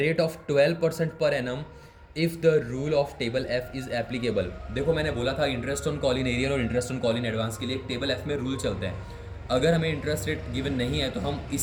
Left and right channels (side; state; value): both; identical; correlation 1.00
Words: of 12% per annum if the rule of table F is applicable. देखो मैंने बोला था interest on call in arrear और interest on call in advance के लिए एक टेबल एफ में rule चलते हैं। अगर हमें इंटरेस्ट रेट गिवन नहीं है तो हम